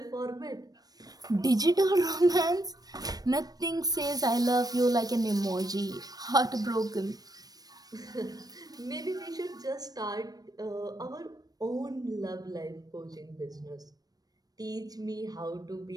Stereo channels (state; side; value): late; left; 0.19 ms